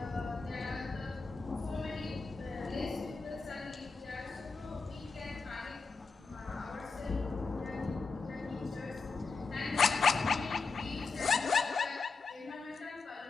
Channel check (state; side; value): quieter; right; 4.4 dB